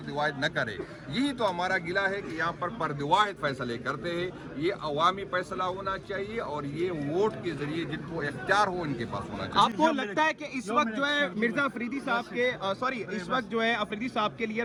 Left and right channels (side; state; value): both; identical; correlation 1.00